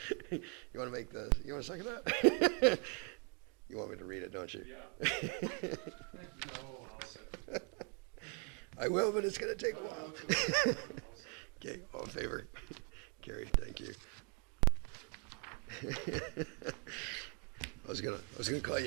You want to second that? You want me to read it, don't you? Yeah. No, I'll second. I will, but it's going to take a while. Okay, all in favor? Carried, thank you. I was gonna call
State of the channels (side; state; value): left; quieter; 34.2 dB